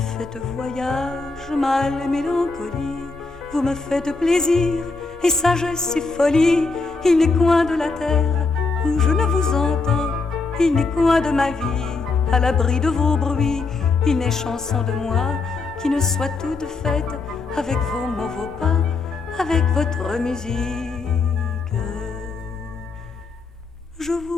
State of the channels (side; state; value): right; quieter; 3.9 dB